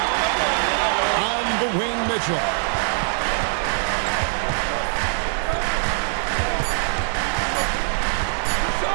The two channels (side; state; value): left; silent; 58 dB below the other